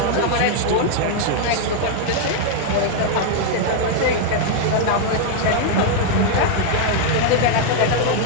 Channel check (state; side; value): different; both; correlation 0.00